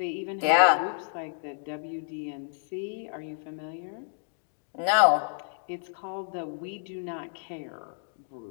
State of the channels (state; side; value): silent; right; digital silence